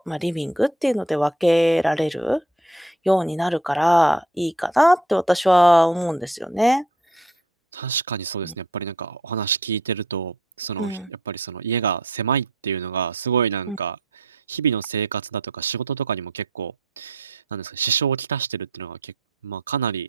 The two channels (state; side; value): normal; both; correlation 0.58